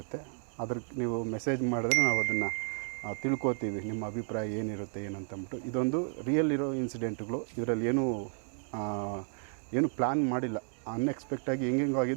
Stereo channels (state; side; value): silent; left; 55 dB below the other